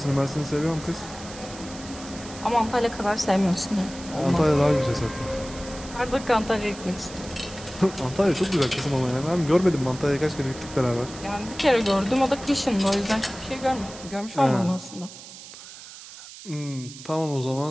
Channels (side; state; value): right; noise; hiss, 15 dB below the sound